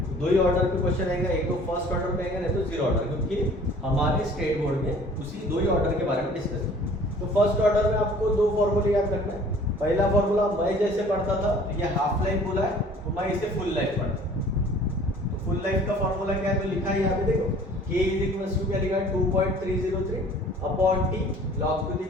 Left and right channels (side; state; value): both; normal; correlation 0.50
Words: दो ही ऑर्डर पे क्वेश्चन आएगा, एक तो फर्स्ट ऑर्डर पे आएगा, नहीं तो जीरो ऑर्डर, क्योंकि हमारे स्टेट बोर्ड में उसी दो ही ऑर्डर के बारे में डिस्कस किया। तो फर्स्ट ऑर्डर में आपको दो फॉर्मूले याद रखना है। पहला फॉर्मूला मैं जैसे पढ़ता था, तो ये हाफ लाइफ बोला है, तो मैं इसे फुल लाइफ पढ़ता। तो फुल लाइफ का फॉर्मूला क्या है, तो लिखा है यहाँ पे देखो, K = क्या लिखा है, 2.303 upon T log to the